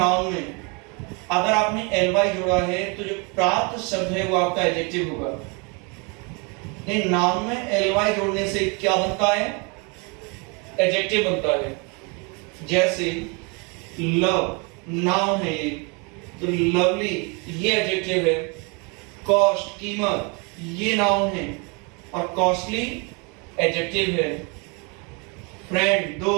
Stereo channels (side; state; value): left; quieter; 31.9 dB